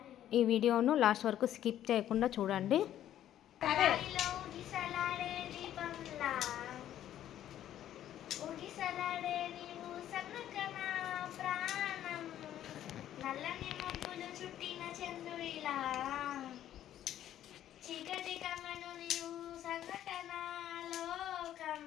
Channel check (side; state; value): right; quieter; 11.7 dB